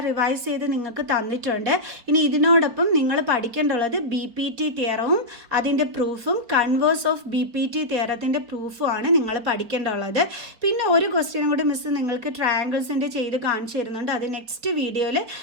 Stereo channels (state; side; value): late; left; 4.2 ms